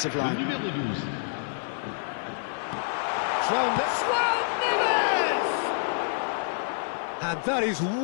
line. And that is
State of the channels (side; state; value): right; silent; digital silence